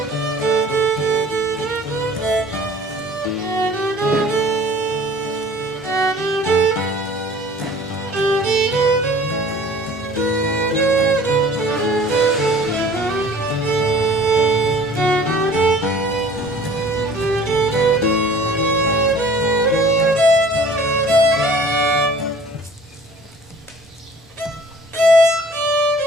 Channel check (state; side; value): normal; both; correlation 0.49